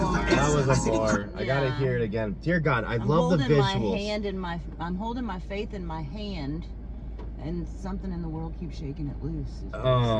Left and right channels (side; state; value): both; identical; correlation 1.00